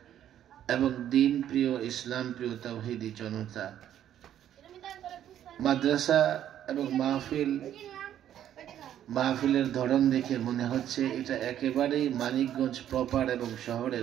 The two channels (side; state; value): left; quieter; 10.9 dB